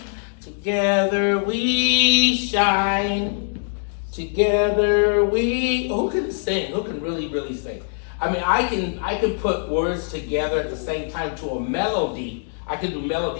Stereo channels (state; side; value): silent; right; digital silence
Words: Together we shine. Together we. Who can sing? Who can really, really sing? I mean, I can put words together at the same time to a melody. I can do